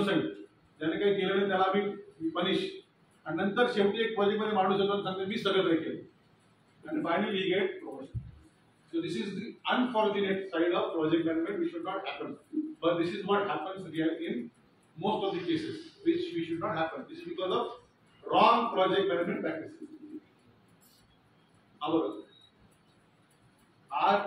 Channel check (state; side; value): identical; both; correlation 1.00